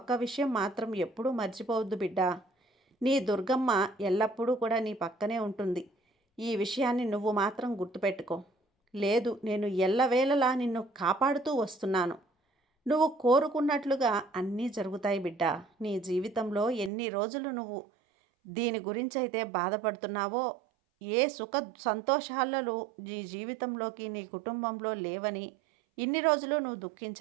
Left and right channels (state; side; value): drops out; left; at 16.9 s